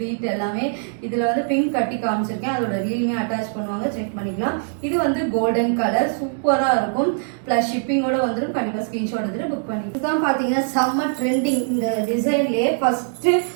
எல்லாமே. இதுல வந்து பிங்க் கட்டி காமிச்சிருக்கேன். அதோட ரீலுமே அட்டாச் பண்ணுவாங்க, செக் பண்ணிக்கலாம். இது வந்து கோல்டன் கலர் சூப்பரா இருக்கும். பிளஸ் ஷிப்பிங்கோட வந்துடும். கண்டிப்பா ஸ்கிரீன்ஷாட் எடுத்துட்டு புக் பண்ணி. இதுதான் பாத்தீங்கன்னா செம்ம ட்ரெண்டிங். இந்த டிசைன்லயே ஃபர்ஸ்ட்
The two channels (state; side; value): silent; left; digital silence